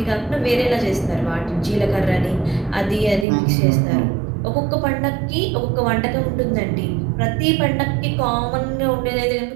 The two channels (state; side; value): drops out; left; at 3.2 s